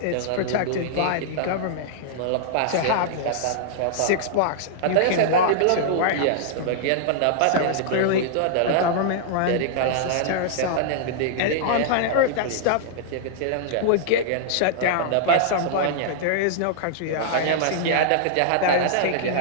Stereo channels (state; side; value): different; both; correlation -0.01